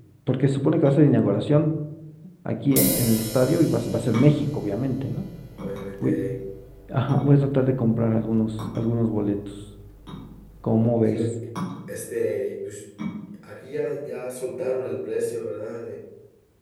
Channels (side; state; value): both; identical; correlation 1.00